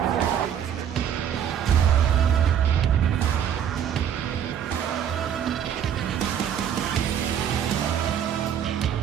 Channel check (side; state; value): left; quieter; 9.0 dB